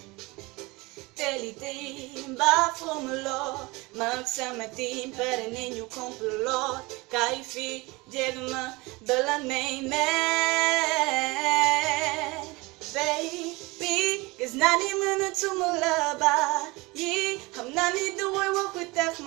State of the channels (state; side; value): quieter; left; 23.9 dB